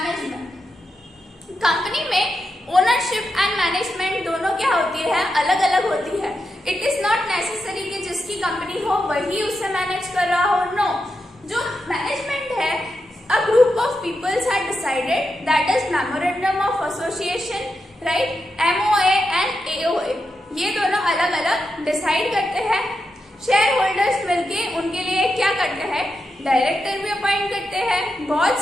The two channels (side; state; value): both; normal; correlation 0.87